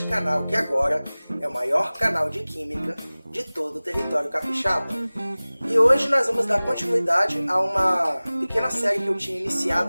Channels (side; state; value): both; inverted; correlation -0.99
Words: canal que agora é o maior canal de Química de todo o território capixaba. E hoje nós vamos dar continuidade a uma pequena série que eu tinha